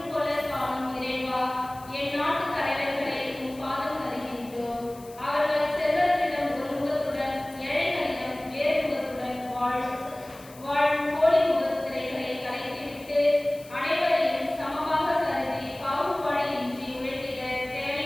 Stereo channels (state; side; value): noise; left; hiss, 22 dB below the sound